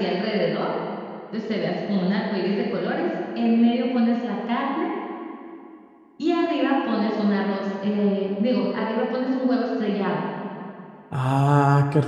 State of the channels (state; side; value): identical; both; correlation 1.00